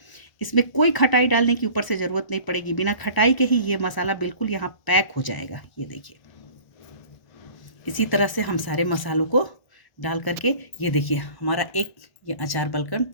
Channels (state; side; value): late; right; 1.0 ms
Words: इसमें कोई खटाई डालने की ऊपर से ज़रूरत नहीं पड़ेगी। बिना खटाई के ही ये मसाला बिल्कुल यहाँ पैक हो जाएगा। ये देखिए, इसी तरह से हम सारे मसालों को डाल करके, ये देखिए हमारा एक ये अचार बनकर